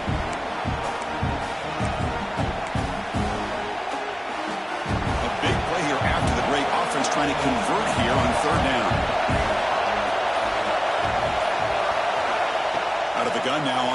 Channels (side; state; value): both; identical; correlation 1.00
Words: A big play here after the break. Offense trying to convert here on 3rd down. Out of the gun now